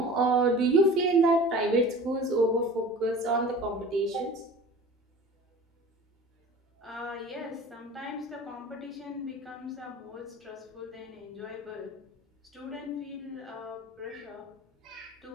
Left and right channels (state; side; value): normal; both; correlation 0.40